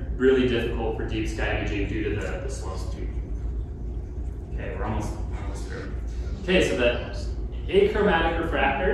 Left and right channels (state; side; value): identical; both; correlation 1.00